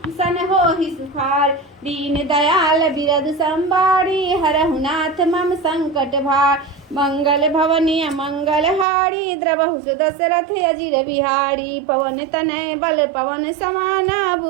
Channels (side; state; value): left; drops out; at 8.8 s